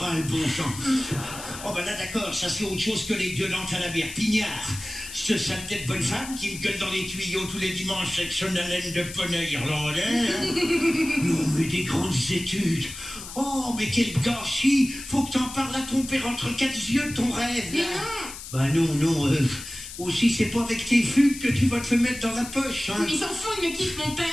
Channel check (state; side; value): noise; left; hiss, 11 dB below the sound